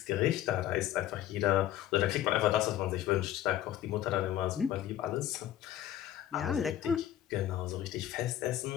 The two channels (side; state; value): right; quieter; 12.2 dB